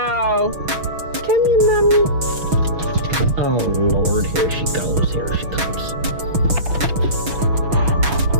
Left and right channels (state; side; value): late; left; 6.2 ms